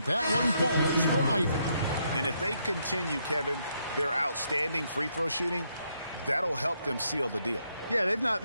that one falls for Ivy. And if they continue, Kevin, their outstanding free throw shooting, that'll help them seal the deal. Yeah, they've not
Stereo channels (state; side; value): inverted; both; correlation -0.75